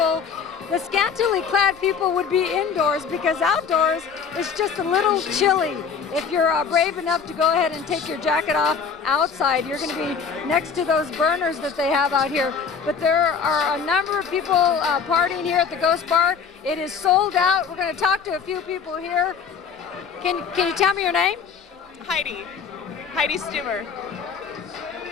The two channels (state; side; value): quieter; right; 6.2 dB